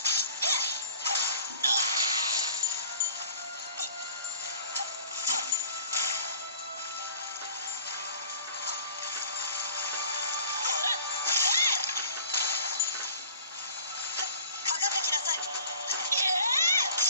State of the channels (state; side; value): inverted; both; correlation -0.48